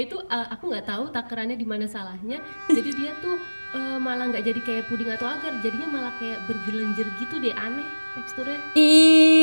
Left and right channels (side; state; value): both; inverted; correlation -1.00